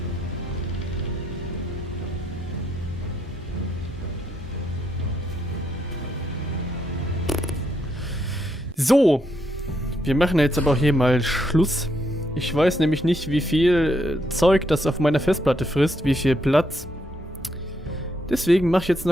So, wir machen jetzt aber auch hier mal Schluss. Ich weiß nämlich nicht, wie viel Zeug das auf meiner Festplatte frisst, wie viel Platz. Deswegen mache ich jetzt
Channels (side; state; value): both; normal; correlation 0.77